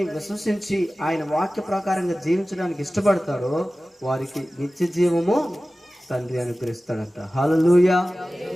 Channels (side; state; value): both; normal; correlation 0.96